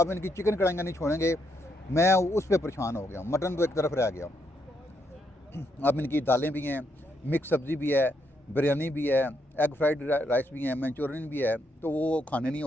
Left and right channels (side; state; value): both; normal; correlation 0.77